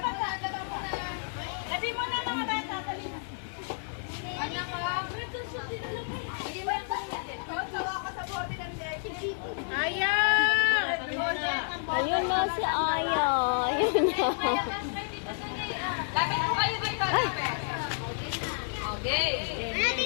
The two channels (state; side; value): silent; right; digital silence